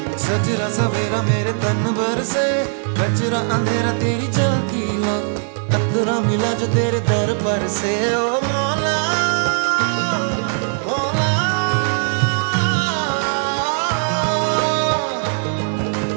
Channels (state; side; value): silent; left; 66 dB below the other